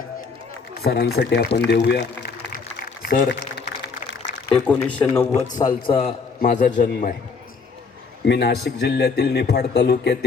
सरांसाठी आपण देऊया। सर, 1990 सालचा माझा जन्म आहे। मी नाशिक जिल्ह्यातील निफाड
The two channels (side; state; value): right; quieter; 4.9 dB